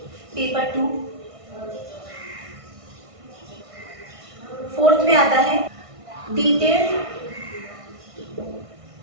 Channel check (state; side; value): late; left; 1.5 ms